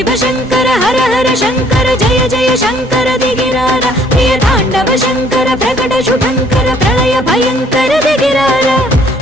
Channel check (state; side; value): normal; both; correlation 0.61